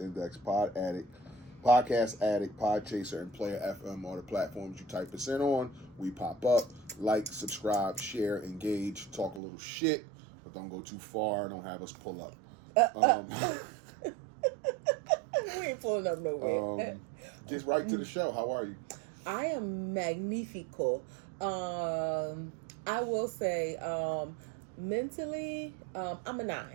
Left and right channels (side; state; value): left; drops out; at 9.4 s